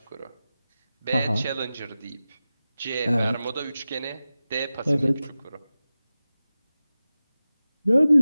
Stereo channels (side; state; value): both; inverted; correlation -0.95